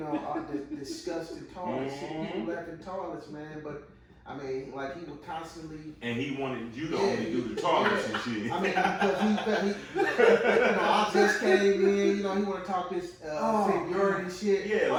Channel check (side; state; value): both; identical; correlation 1.00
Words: all the disgusting toilets, shit people left in toilets, man. But I mean, like he would constantly. And he wanted you to only do the toilets and shit. I mean, because he I just came in, he want to talk this seniority shit. Yeah,